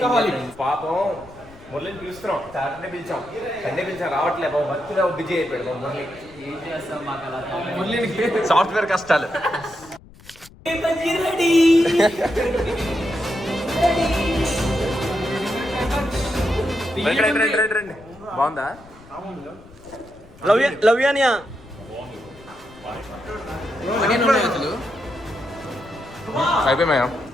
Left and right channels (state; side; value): noise; left; rumble, 23 dB below the sound